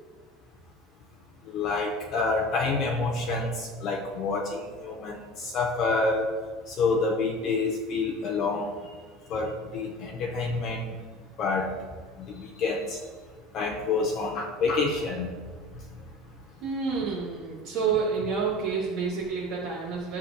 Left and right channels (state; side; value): normal; both; correlation 0.39